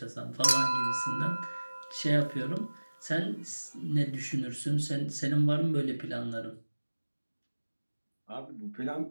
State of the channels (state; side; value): inverted; both; correlation -1.00